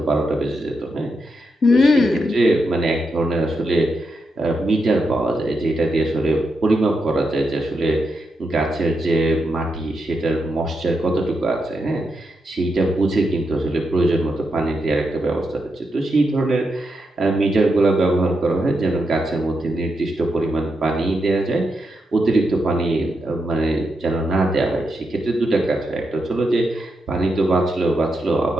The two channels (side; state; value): both; normal; correlation 0.84